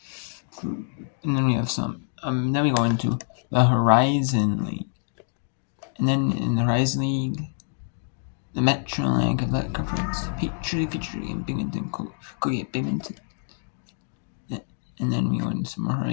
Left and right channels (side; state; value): right; silent; digital silence